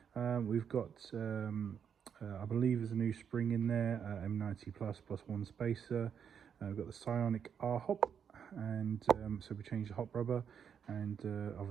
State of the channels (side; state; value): left; quieter; 7.7 dB